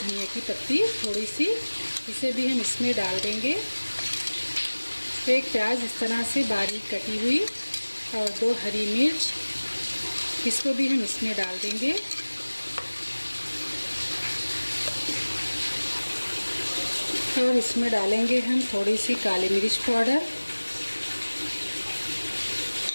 की पत्ती थोड़ी सी, इसे भी हम इसमें डाल देंगे। 1 प्याज इस तरह से बारीक कटी हुई, और 2 हरी मिर्च, इसको भी हम इसमें डाल देंगे। और इसमें डालेंगे हम थोड़ी सी काली मिर्च पाउडर,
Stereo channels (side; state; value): both; inverted; correlation -1.00